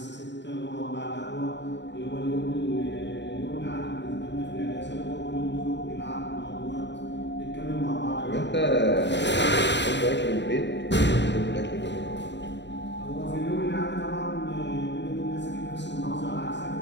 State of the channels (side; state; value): right; late; 0.52 ms